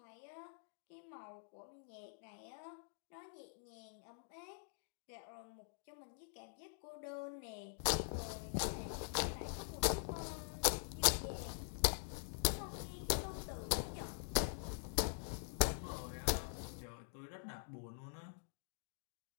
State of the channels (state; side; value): silent; right; digital silence